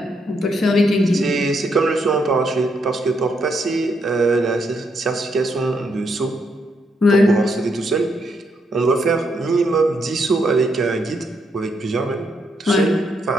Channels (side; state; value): both; normal; correlation 0.77